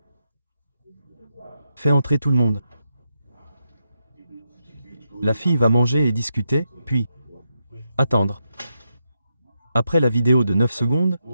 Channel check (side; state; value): both; inverted; correlation -0.84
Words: Fais entrer tout le monde. La fille va manger et discuter, puis attendre. Après la vidéo de 9 secondes,